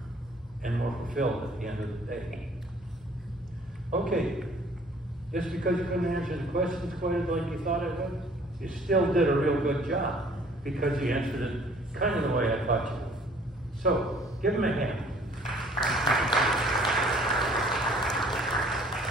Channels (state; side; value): normal; both; correlation 0.56